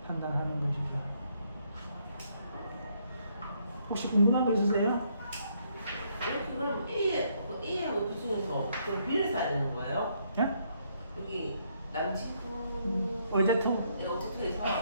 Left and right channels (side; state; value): both; inverted; correlation -0.71